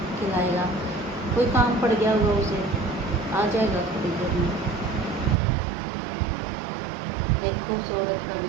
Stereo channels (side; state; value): left; drops out; at 5.4 s